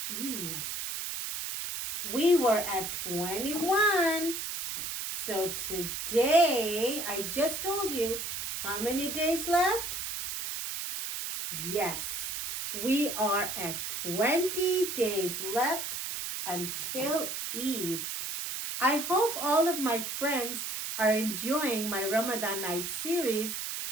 Eid. We were at 21. So today, I just told you how many days left? Yes, we are at 20 days left until Eid. I hope all of my friends are enjoying my Ramadan night series.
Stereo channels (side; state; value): right; noise; hiss, 4 dB below the sound